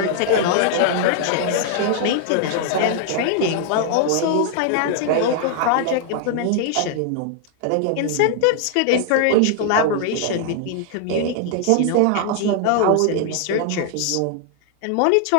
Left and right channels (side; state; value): both; different; correlation 0.00